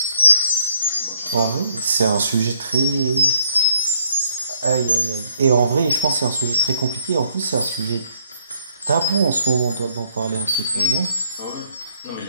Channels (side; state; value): both; inverted; correlation -0.70